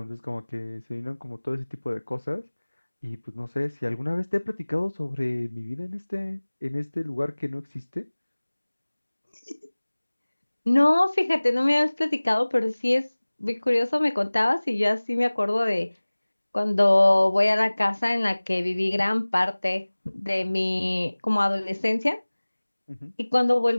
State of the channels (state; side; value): inverted; both; correlation -1.00